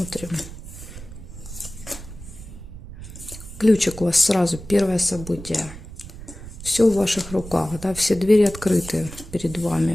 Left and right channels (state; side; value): noise; right; rumble, 13 dB below the sound